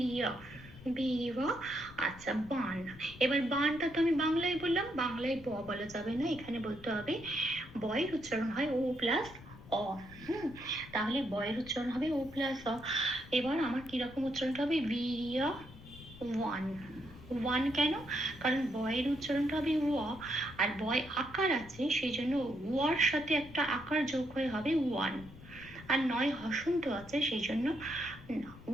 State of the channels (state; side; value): noise; left; rumble, 18 dB below the sound